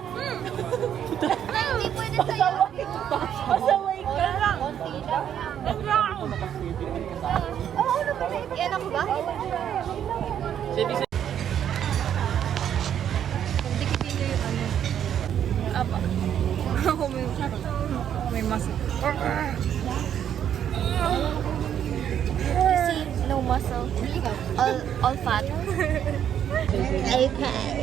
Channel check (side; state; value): left; quieter; 9.5 dB